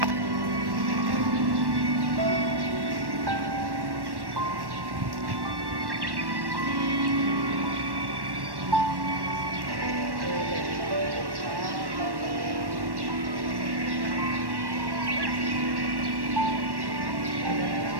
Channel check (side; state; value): left; late; 1.1 ms